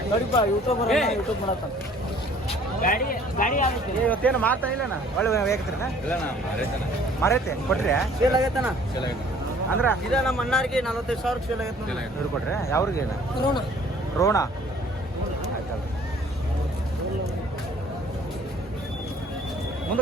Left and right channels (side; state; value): both; normal; correlation 0.55